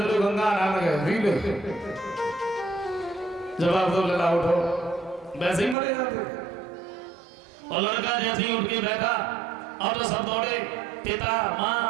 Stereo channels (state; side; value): drops out; left; at 5.8 s